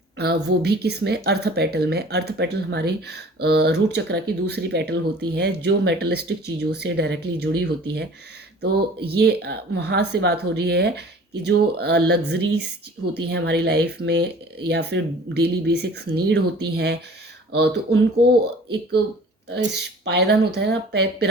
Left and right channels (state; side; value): normal; both; correlation 0.47